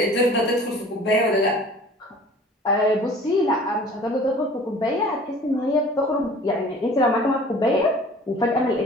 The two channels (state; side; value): normal; both; correlation 0.47